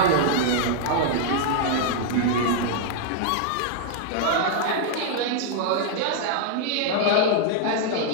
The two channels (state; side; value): different; both; correlation -0.01